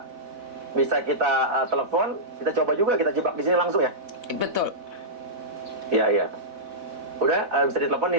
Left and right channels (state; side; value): late; left; 4.0 ms